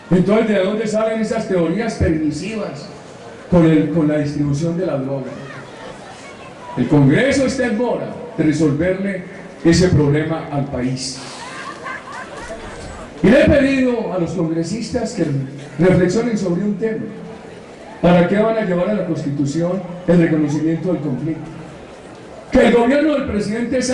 Entonces, ¿de dónde salen esas teorías permisivas con la distribución de la droga? El Congreso está en mora de resolverle ese problema al país. Y le he pedido a los congresistas que reflexionen sobre un tema. ¿Para qué van a llevar a la Constitución el reconocimiento del conflicto? Que el gobierno del presidente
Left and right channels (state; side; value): identical; both; correlation 1.00